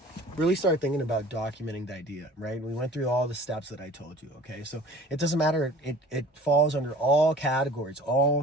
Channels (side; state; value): both; normal; correlation 0.46